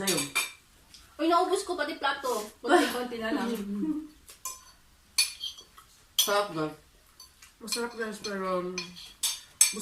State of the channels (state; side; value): identical; both; correlation 1.00